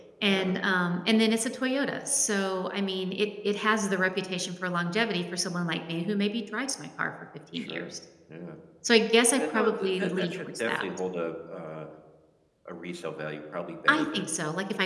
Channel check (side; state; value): both; identical; correlation 1.00